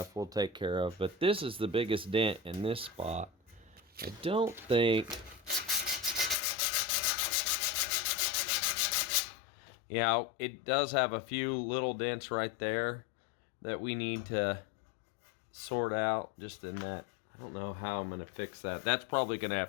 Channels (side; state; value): right; drops out; at 6.4 s